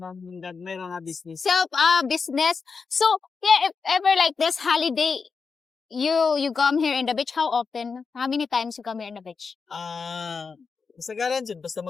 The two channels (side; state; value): right; quieter; 5.2 dB